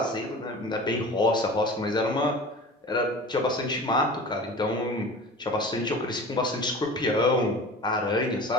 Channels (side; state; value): both; normal; correlation 0.38